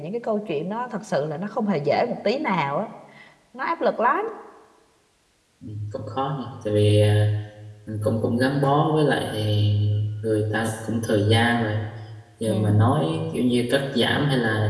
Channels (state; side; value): identical; both; correlation 1.00